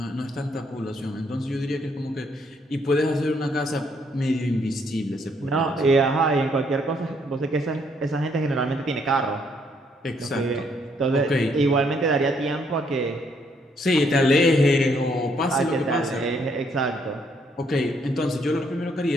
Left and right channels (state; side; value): normal; both; correlation 0.70